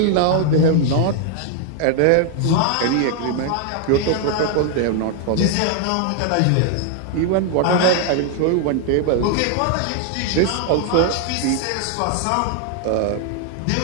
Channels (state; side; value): different; both; correlation 0.00